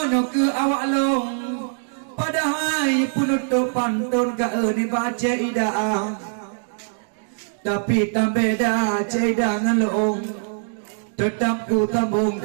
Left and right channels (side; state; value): left; silent; digital silence